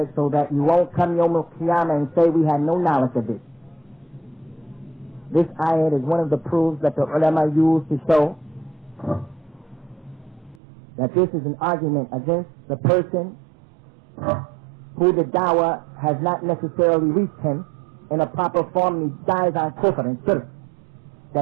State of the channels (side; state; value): left; drops out; at 10.6 s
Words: so that you won't come Yawm al-Qiyamah and say we had no knowledge of this. This ayat is one of the proofs that the ulama use to show that this is an argument against the person who the dawah has not necessarily reached him in a proper form, and he dies on kufr and shirk,